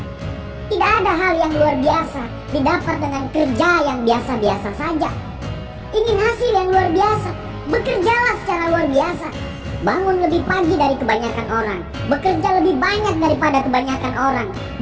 Tidak ada hal yang luar biasa didapat dengan kerja yang biasa-biasa saja. Ingin hasil yang luar biasa, bekerjalah secara luar biasa. Bangun lebih pagi dari kebanyakan orang, bekerja lebih banyak daripada kebanyakan orang.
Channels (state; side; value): identical; both; correlation 1.00